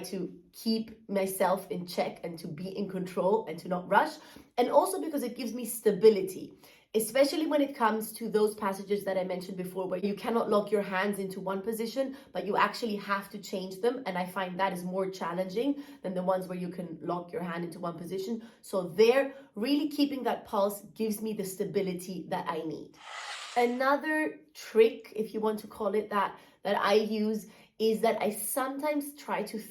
to keep myself in check and to be in control and to not rush. And also because it gives me stability, especially when it comes to those passages that I mentioned before, where you cannot lock your hands into one position, but you actually have to change them. And I find that is more challenging than the ones where you can lock your hand into one position. So there, really keeping that pulse gives me the stability that I need. Another trick, if you want to call it that I use is that I sometimes try to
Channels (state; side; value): identical; both; correlation 1.00